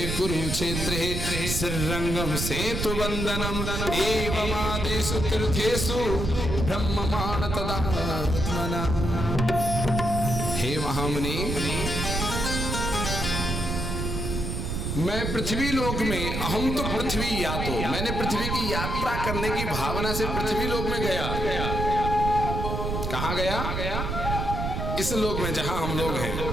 कुरुक्षेत्रे श्रीरंगम सेतु वंदनम एवमादिषु तीर्थेषु ब्रह्ममाण तदात्मना। हे महामुनि, मैं पृथ्वी लोक में, अहम तो पृथ्वी यातो, मैंने पृथ्वी की यात्रा करने की भावना से पृथ्वी लोक में गया। कहाँ गया? इस लोक में जहां हम लोग हैं।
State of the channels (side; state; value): right; noise; rumble, 2 dB below the sound